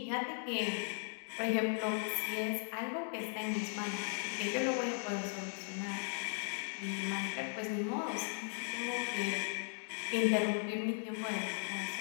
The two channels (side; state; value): right; silent; 53 dB below the other